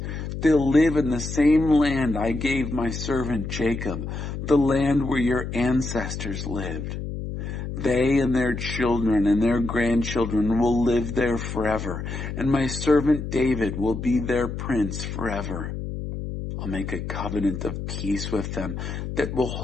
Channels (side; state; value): left; noise; hum, 6 dB below the sound